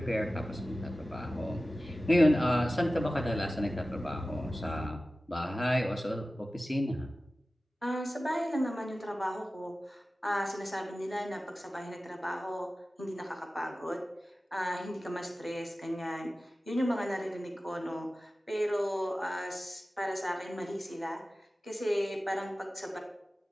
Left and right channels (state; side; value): normal; both; correlation 0.96